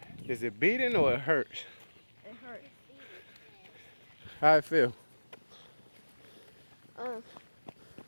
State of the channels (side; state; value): both; inverted; correlation -1.00